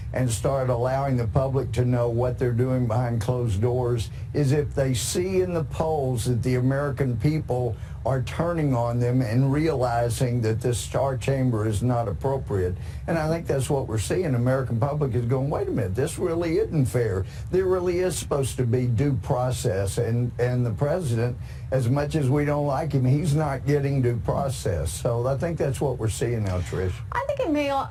and start allowing the public to know what they're doing behind closed doors is if they see in the polls that the American people are turning on them and realizing that this star chamber is not appropriate. And I think that's what we're seeing. The American public is going, wait a minute, this really isn't fair. There really is supposed to be due process. And the president, as much as we don't like him, he's not getting due process. So I think that's what we're seeing now, Trish. I think it may all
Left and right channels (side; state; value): both; identical; correlation 1.00